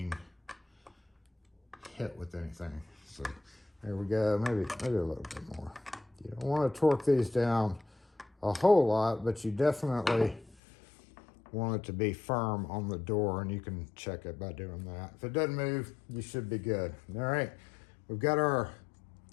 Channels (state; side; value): drops out; right; at 10.6 s